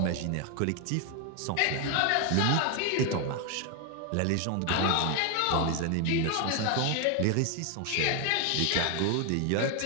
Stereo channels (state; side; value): different; both; correlation 0.01